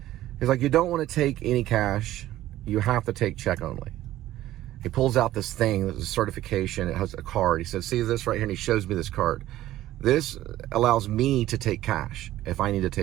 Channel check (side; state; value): left; quieter; 14.4 dB